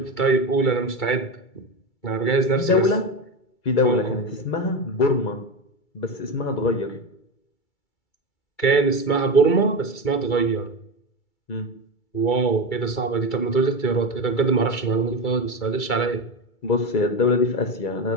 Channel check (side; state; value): right; late; 2.3 ms